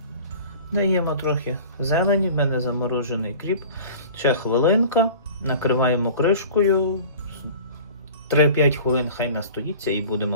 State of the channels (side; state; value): both; inverted; correlation -0.41